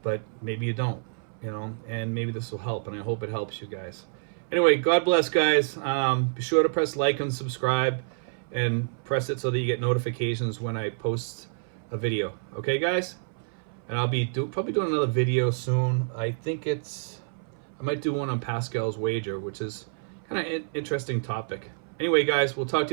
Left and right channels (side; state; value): left; silent; 59 dB below the other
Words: but maybe you don't, you know, and maybe this will help, and I hope it helps you guys. Anyway, God bless, guys. Be sure to press like and subscribe and press it so that you get notifications when I post a video. Okay, guys? And I'll be probably doing another video soon. I think I might do one on Pascal's wager, which is kind of an interesting topic. Anyway, guys, we'll talk